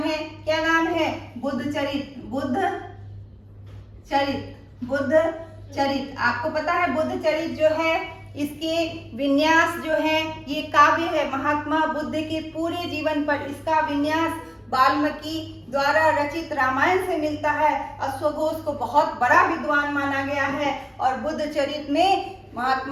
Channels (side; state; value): both; identical; correlation 1.00